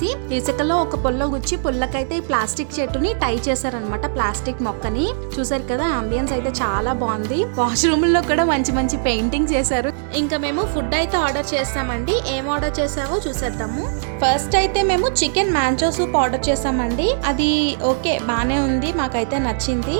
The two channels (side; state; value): left; silent; digital silence